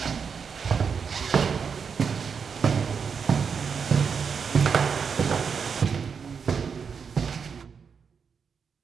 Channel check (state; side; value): quieter; left; 6.2 dB